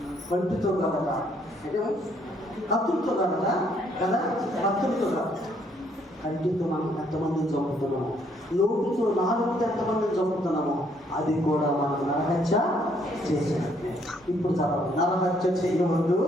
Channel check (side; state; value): both; normal; correlation 0.68